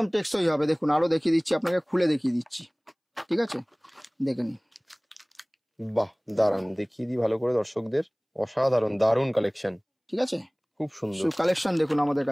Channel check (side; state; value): both; identical; correlation 1.00